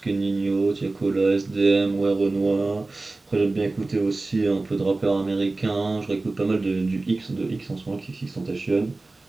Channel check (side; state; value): left; quieter; 3.3 dB